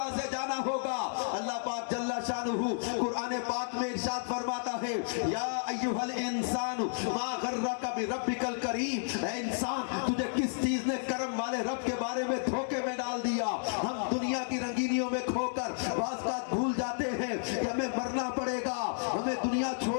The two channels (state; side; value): silent; right; digital silence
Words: سے جانا ہوگا. اللہ پاک جل شانہ قرآن پاک میں ارشاد فرماتا ہے، یا ایھا الانسان ما غرک بربک الکریم، اے انسان تجھے کس چیز نے کرم والے رب کے بارے میں دھوکے میں ڈال دیا. ہم دنیا کی رنگینیوں میں کھو کر بعض بات بھول جاتے ہیں کہ ہمیں مرنا پڑے گا، ہمیں دنیا